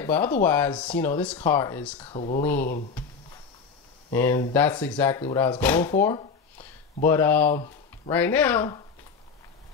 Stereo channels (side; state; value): right; quieter; 5.6 dB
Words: But otherwise, this car is clean. And that's exactly what I was going for. But right now,